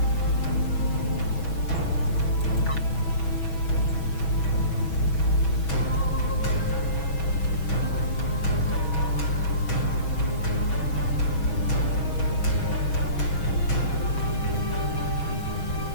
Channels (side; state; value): right; late; 6.2 ms